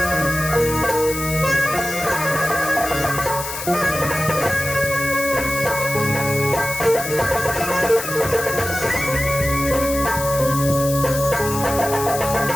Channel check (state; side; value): noise; left; hiss, 7 dB below the sound